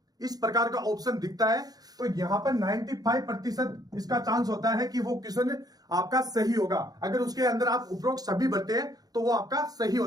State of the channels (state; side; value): late; left; 0.19 ms